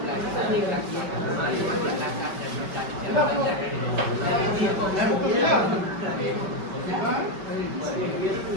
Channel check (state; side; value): late; left; 5.2 ms